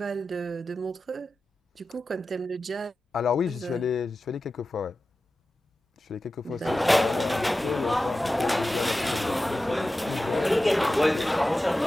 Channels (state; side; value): normal; both; correlation 0.94